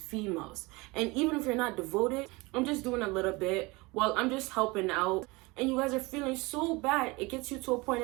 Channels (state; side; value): quieter; left; 24.2 dB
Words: females. And even if you're not devoted, I'm just doing a little bit. Well, I'm just helping out. And you guys are feeling so bad. It gets you to a point